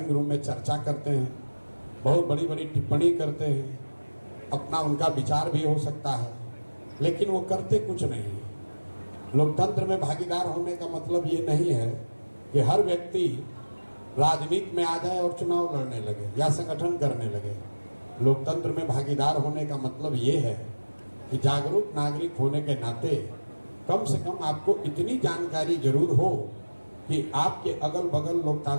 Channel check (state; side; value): inverted; both; correlation -1.00